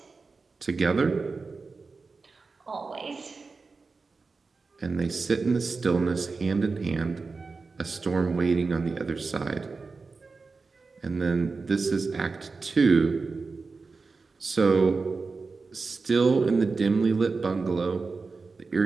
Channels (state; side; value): quieter; left; 4.3 dB